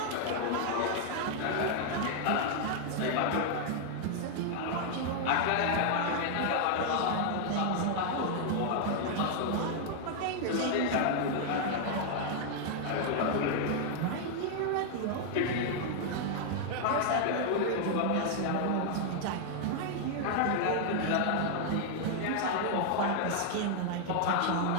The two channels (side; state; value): both; different; correlation 0.00